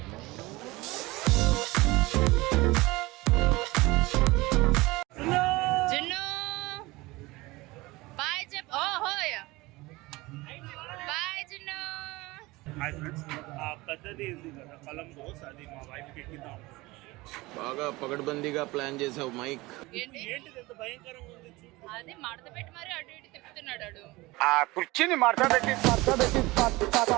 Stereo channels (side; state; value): left; quieter; 21.3 dB